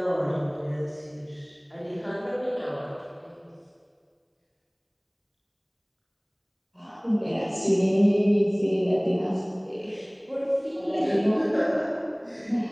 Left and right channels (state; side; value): identical; both; correlation 1.00